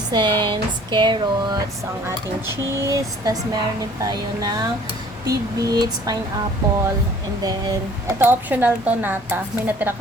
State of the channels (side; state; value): both; normal; correlation 0.53